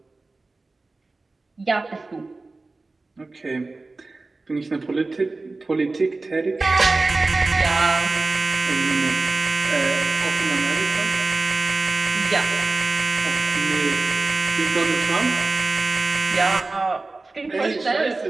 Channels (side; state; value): left; quieter; 3.4 dB